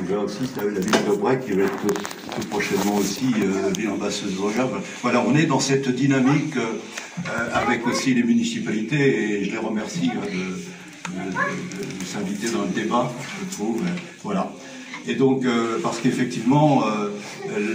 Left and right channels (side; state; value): both; identical; correlation 1.00